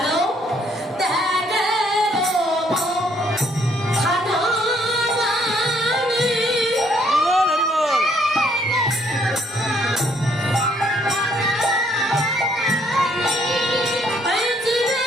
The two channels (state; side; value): normal; both; correlation 0.67